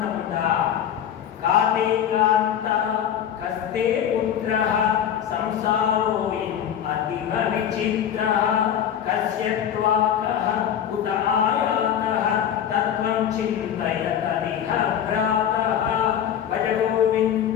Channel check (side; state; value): right; quieter; 9.4 dB